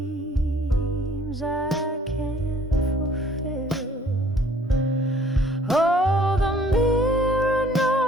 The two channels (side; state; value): both; normal; correlation 0.57